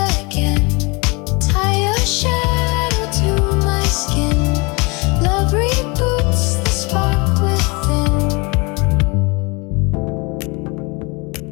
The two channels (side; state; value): right; quieter; 28.6 dB